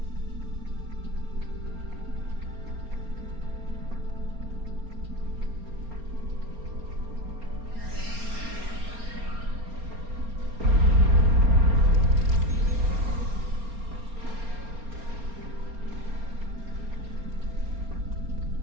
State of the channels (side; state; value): left; late; 4.3 ms